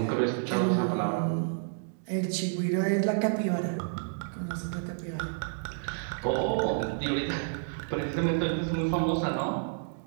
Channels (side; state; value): left; silent; digital silence